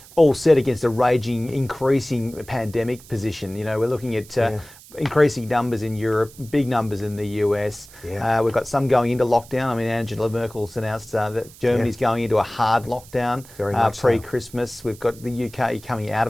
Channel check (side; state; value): right; noise; hiss, 21 dB below the sound